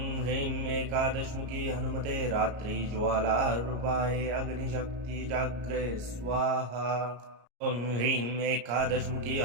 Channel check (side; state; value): left; late; 34 ms